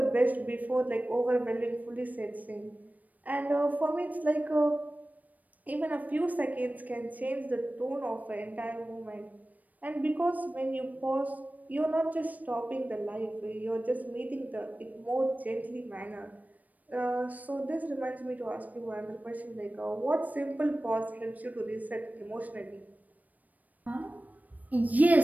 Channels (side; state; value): left; late; 0.078 ms